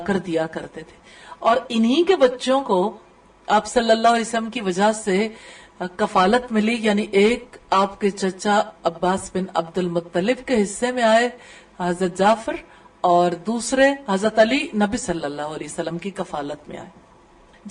کر دیا کرتے تھے، اور انہی کے بچوں کو آپ صلی اللہ علیہ وسلم کی وجہ سے کفالت ملی. یعنی ایک آپ کے چچا عباس بن عبد المطلب کے حصے میں آئے حضرت جعفر، اور دوسرے حضرت علی نبی صلی اللہ علیہ وسلم کی کفالت میں آئے.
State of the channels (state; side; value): identical; both; correlation 1.00